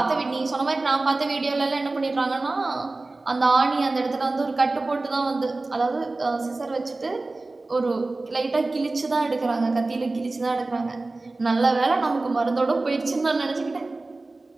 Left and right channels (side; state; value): left; quieter; 3.2 dB